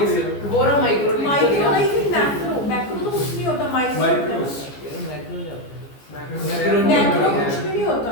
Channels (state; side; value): late; right; 14 ms